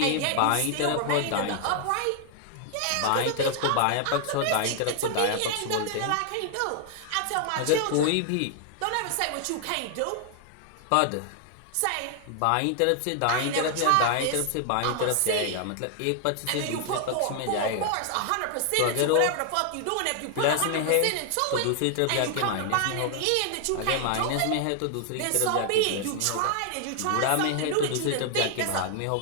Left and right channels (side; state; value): both; different; correlation 0.00